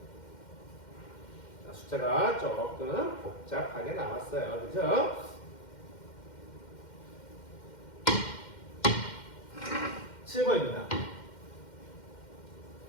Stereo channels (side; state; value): right; late; 2.1 ms